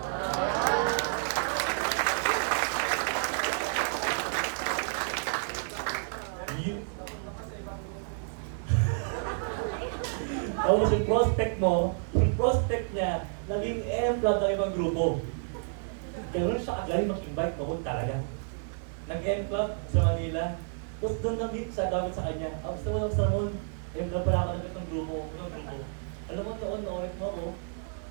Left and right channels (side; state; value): left; silent; 58 dB below the other